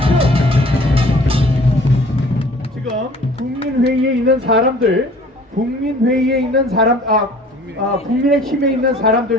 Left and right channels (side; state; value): both; normal; correlation 0.51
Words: 지금 국민회의에 있는 사람들, 국민의힘에 있는